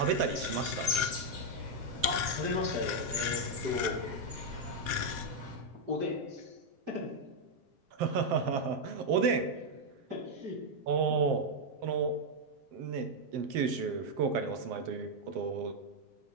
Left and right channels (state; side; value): late; left; 7.6 ms